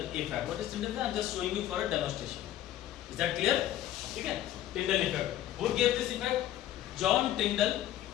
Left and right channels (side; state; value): right; quieter; 12.8 dB